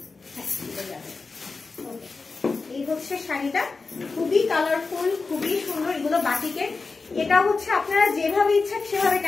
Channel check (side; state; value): right; quieter; 4.1 dB